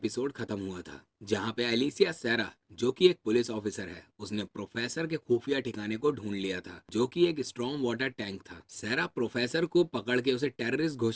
खत्म हुआ था, जहां पे एलिसिया सेरा जो कि एक पुलिस ऑफिसर है, उसने प्रोफेसर के खुफिया ठिकाने को ढूंढ लिया था जो कि एक स्ट्रॉन्ग वाटर टैंक था। सेरा प्रोफेसर को पकड़ के उसे टेररिस्ट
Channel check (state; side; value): identical; both; correlation 1.00